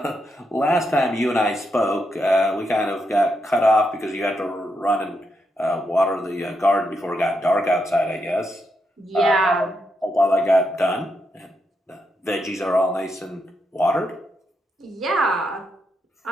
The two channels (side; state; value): both; normal; correlation 0.82